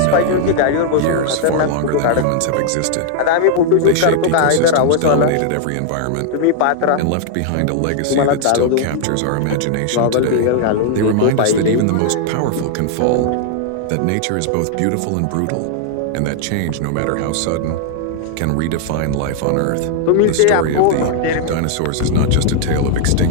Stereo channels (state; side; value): different; both; correlation 0.00